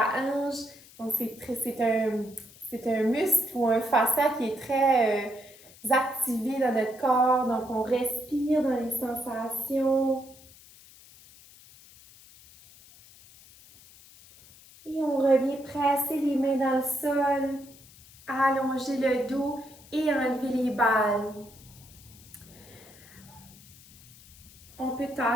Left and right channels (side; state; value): left; noise; hiss, 23 dB below the sound